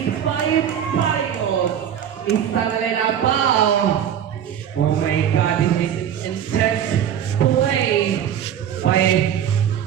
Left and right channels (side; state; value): left; quieter; 9.5 dB